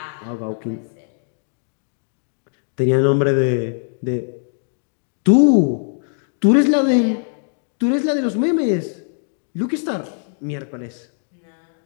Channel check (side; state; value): right; silent; digital silence